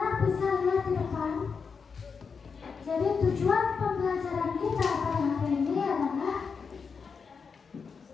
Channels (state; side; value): quieter; right; 5.6 dB